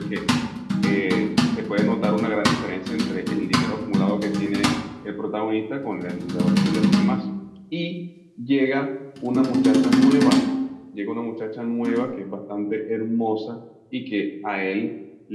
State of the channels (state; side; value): identical; both; correlation 1.00